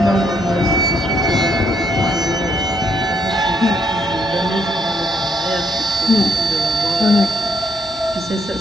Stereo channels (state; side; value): normal; both; correlation 0.72